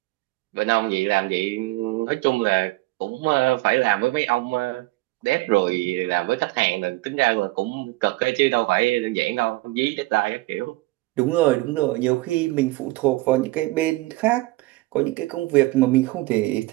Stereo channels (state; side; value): quieter; left; 20.5 dB